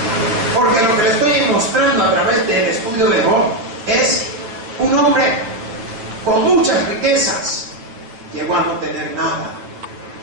Porque lo que le estoy mostrando a través del estudio de Job es un hombre con muchas riquezas. Llegó a no tener nada.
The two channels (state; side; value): late; left; 8.9 ms